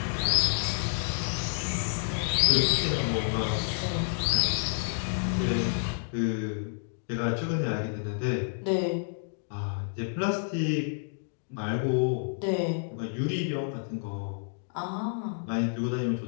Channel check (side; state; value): right; silent; digital silence